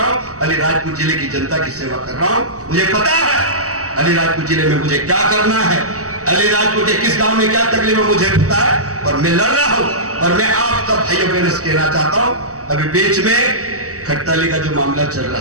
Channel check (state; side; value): late; left; 0.66 ms